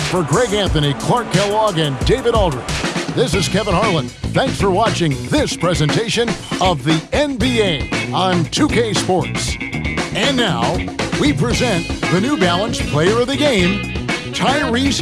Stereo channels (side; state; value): both; identical; correlation 1.00